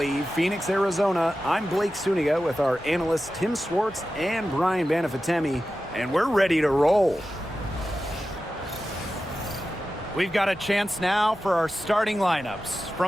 Phoenix, Arizona, I'm Blake Suniga with our analysts Tim Swartz and Brian Banafitemi, and we're ready to roll. We've got a chance now for our starting lineups.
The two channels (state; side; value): normal; both; correlation 0.93